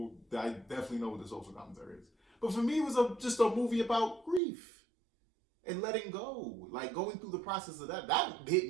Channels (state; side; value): drops out; left; at 4.4 s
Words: definitely know what the social commentary is. But for me, it was just a movie about grief and letting go, like going through the process of that. That